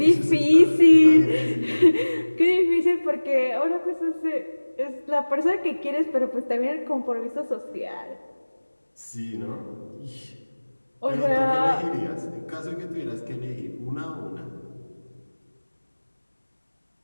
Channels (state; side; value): inverted; both; correlation -1.00